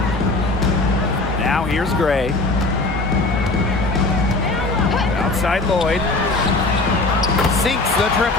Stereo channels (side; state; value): right; quieter; 3.1 dB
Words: Now here's Gray. Outside Lloyd. Sinks the